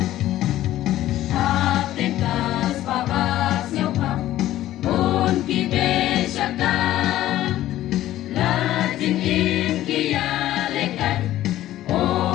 hak ten kas pa bas nyau pa kun ki be shaka la jing im ki ya le kai o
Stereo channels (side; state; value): right; quieter; 14.0 dB